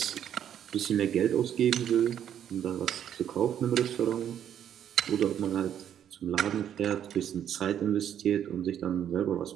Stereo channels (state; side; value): quieter; left; 9.8 dB